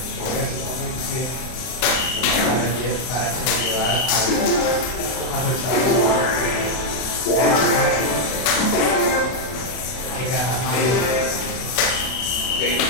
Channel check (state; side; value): late; right; 32 ms